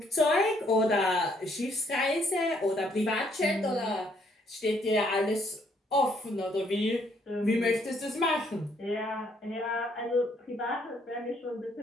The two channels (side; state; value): both; normal; correlation 0.68